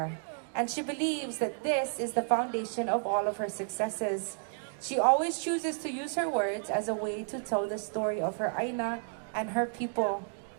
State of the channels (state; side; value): silent; left; digital silence